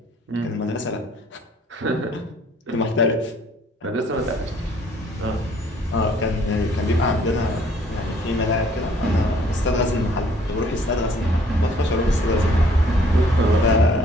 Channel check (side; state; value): both; normal; correlation 0.60